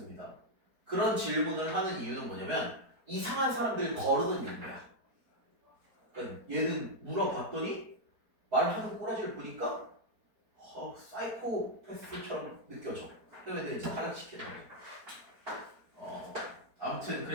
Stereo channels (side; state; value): left; late; 4.5 ms